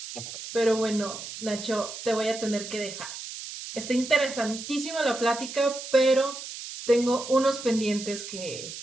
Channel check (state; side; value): noise; right; hiss, 10 dB below the sound